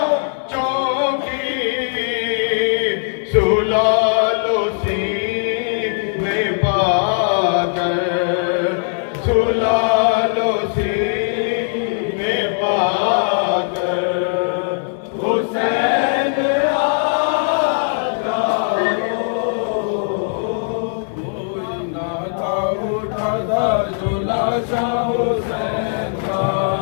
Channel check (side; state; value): right; silent; 66 dB below the other